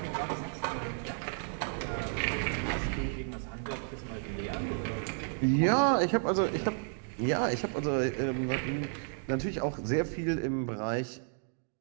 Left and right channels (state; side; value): silent; left; 56 dB below the other